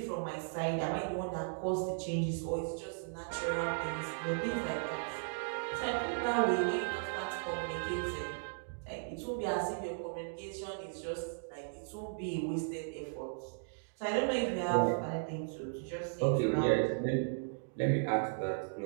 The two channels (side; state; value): left; silent; digital silence